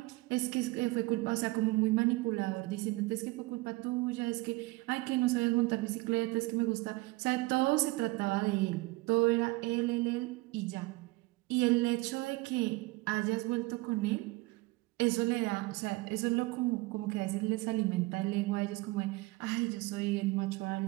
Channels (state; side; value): quieter; left; 22.0 dB